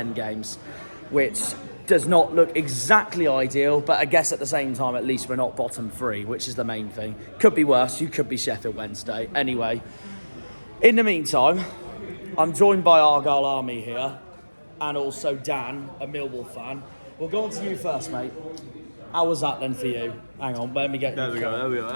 games. Which does not look exactly ideal, but I guess at the same time, at least we're not bottom 3, which is the main thing. Could be worse, you could be Sheffield Wednesday. Anyway, in the meantime, I'm joined by Argyle Army here, and also Dan, a Millwall fan. We'll go on to you first, mate. How was that then for you? Hang on, let me get... There we go,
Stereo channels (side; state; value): both; inverted; correlation -1.00